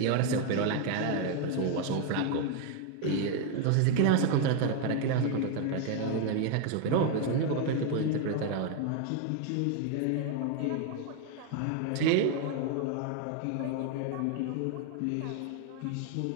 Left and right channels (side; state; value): both; different; correlation 0.01